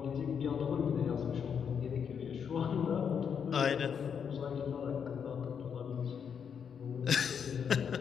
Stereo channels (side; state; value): right; quieter; 7.2 dB